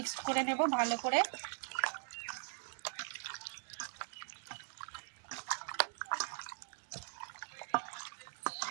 করে নেব ভালো করে।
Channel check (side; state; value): left; silent; digital silence